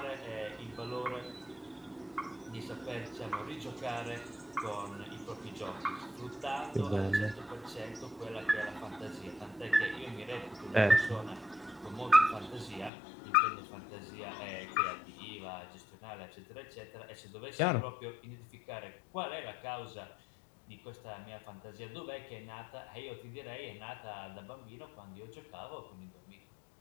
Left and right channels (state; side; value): drops out; right; at 12.9 s